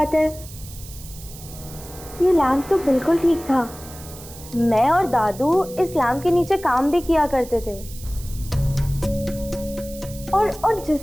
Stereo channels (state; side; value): noise; right; hiss, 17 dB below the sound